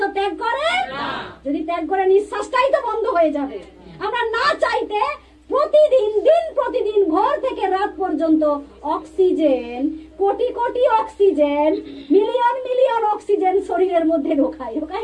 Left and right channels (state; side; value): identical; both; correlation 1.00